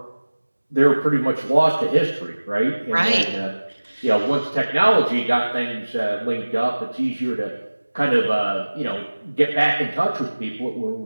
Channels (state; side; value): inverted; both; correlation -1.00